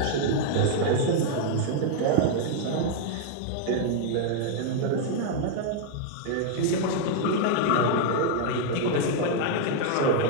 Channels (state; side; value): different; both; correlation 0.00